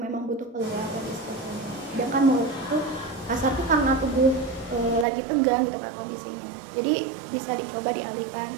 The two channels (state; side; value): drops out; left; at 5.1 s